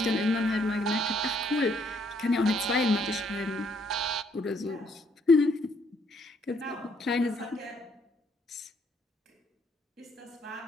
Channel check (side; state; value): both; normal; correlation 0.68